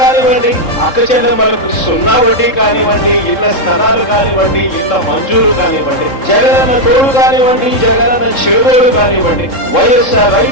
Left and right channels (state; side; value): late; right; 3.7 ms